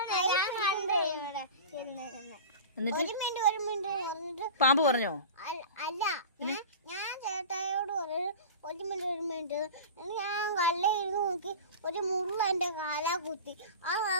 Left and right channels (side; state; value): both; inverted; correlation -0.33